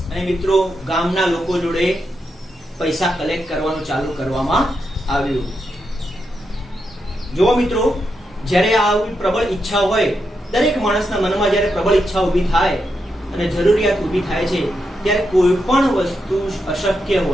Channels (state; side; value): normal; both; correlation 0.84